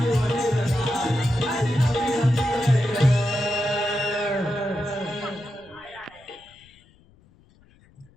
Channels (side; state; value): left; noise; rumble, 29 dB below the sound